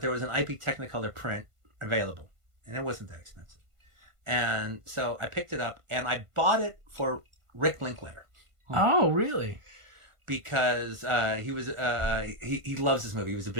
was an IP Technicolor print available, and it wasn't that expensive. And so I picked it up, and I bought it for Rick Linklater. Oh, really? Because he loves this movie. He was a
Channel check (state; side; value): late; left; 1.5 ms